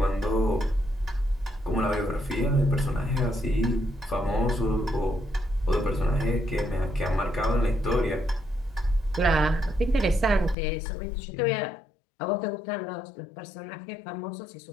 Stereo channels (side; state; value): right; drops out; at 10.6 s